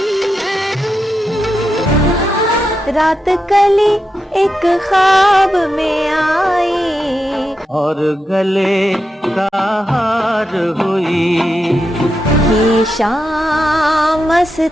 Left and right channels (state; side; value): normal; both; correlation 0.87